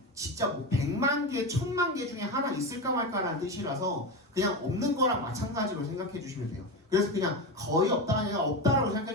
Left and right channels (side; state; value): both; normal; correlation 0.19